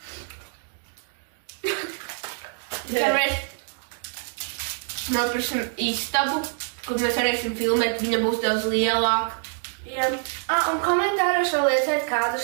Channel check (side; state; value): left; silent; 61 dB below the other